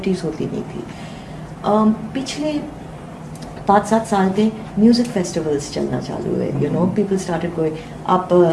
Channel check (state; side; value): identical; both; correlation 1.00